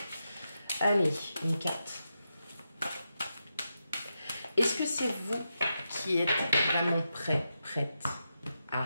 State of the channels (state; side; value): inverted; both; correlation -0.87